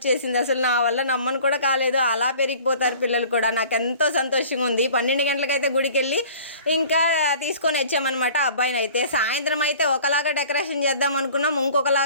అసలు నా వల్ల నమ్మను కూడా కాలేదు. అలా పెరిగిపోతారు పిల్లలు కూడా. నాకు ఎంతో సంతోషంగా ఉంది. 12 గంటలకైతే గుడికి వెళ్ళి ఇంకా తీసుకొని వచ్చామన్నమాట అబ్బాయిని. అయితే సాయంత్రం అయితే ఒకలాగా డెకరేషన్ చేద్దాం అనుకున్నాం,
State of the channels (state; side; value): inverted; both; correlation -0.46